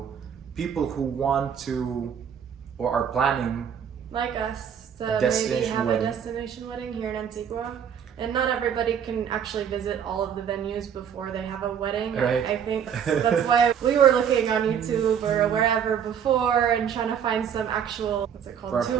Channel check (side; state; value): left; quieter; 8.2 dB